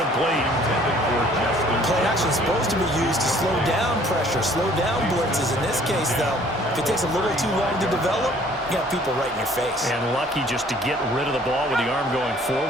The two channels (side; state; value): both; normal; correlation 0.56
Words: Play action is supposed to be used to slow down pressure, slow down blitzes. In this case, though, if it takes a little too long to develop, you got people right in your face. And lucky just to get rid of the ball with the arm going